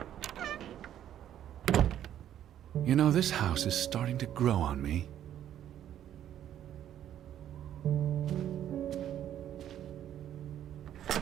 You know, this house is starting to grow on me.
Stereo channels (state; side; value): quieter; left; 10.9 dB